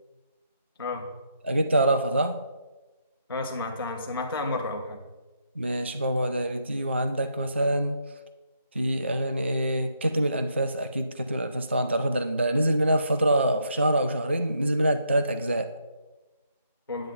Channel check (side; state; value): both; inverted; correlation -0.76